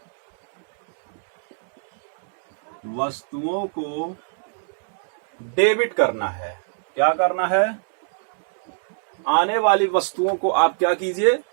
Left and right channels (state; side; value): silent; left; digital silence